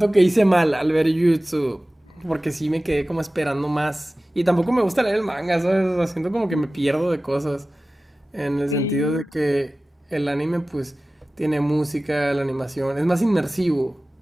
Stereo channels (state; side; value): normal; both; correlation 0.97